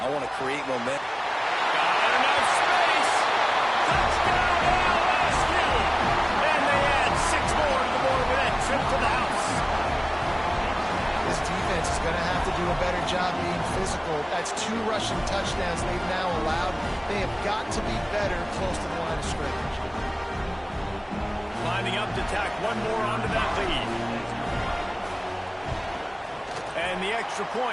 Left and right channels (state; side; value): identical; both; correlation 1.00